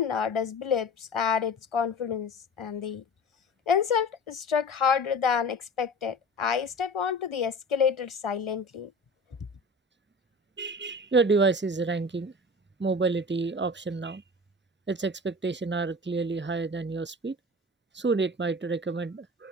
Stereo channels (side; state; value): both; normal; correlation 0.36